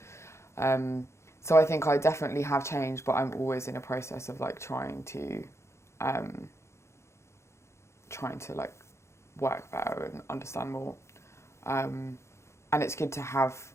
So I think I definitely have changed, but I'm always in a process of like trying to like work better and understand more. And it's good to have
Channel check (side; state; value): right; late; 0.13 ms